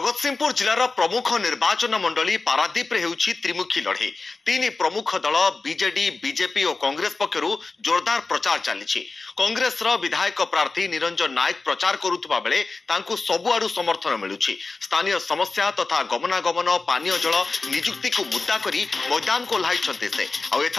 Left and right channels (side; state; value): right; quieter; 3.8 dB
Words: जिलार प्रमुख निर्वाचन मंडली पारादीप रे हेउछि त्रिमुखी लड़े। तीन प्रमुख दल बीजेडी बीजेपी और कांग्रेस पक्षरु जोरदार प्रचार चली। कांग्रेस विधायक प्रार्थी निरंजन नायक प्रचार करुवा बेले तांकु सबुआडु समर्थन मिलुछि। स्थानीय समस्या तथा गमनागमन पानीय जल निजुक्ति को मुद्दा करी मैदान को ओह्लाइछन्ते से। आ